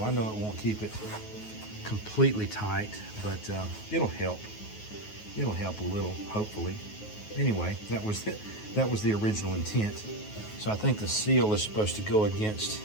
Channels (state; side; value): late; right; 9.4 ms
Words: I know it won't keep it completely tight, but it'll help. It'll help a little, hopefully. Anyway, that was the original intent. So I think the seal is supposed to go against